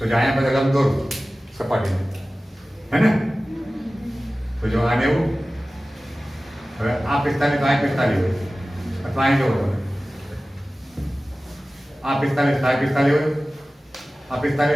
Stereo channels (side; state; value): both; normal; correlation 0.96